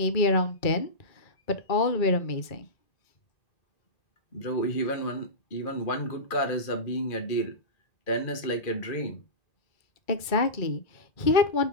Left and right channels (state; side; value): late; right; 2.3 ms